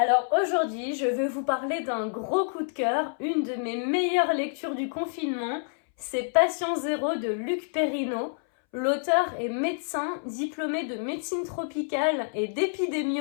Alors aujourd'hui, je vais vous parler d'un gros coup de cœur, une de mes meilleures lectures du confinement, c'est Patient Zéro de Luc Perrineau. L'auteur est médecin, diplômé de médecine tropicale et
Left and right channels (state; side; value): silent; right; 60 dB below the other